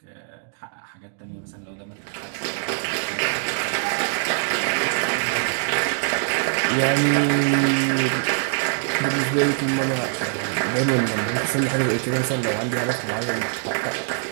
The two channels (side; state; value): left; silent; digital silence